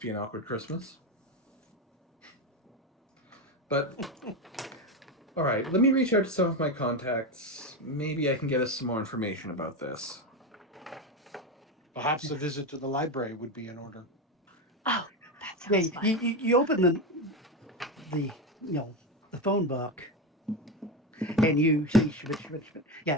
be an awkward Christmas. But, all right, let me reach out to some of my contacts. Maybe I can get us some more information about this. Perhaps a visit to the library would be in order. Oh, that Yeah, sounds fun. you open the the phone book, and you see Schmidt.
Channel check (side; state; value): both; normal; correlation 0.16